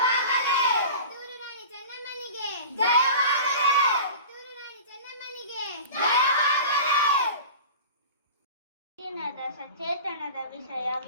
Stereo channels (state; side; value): inverted; both; correlation -0.37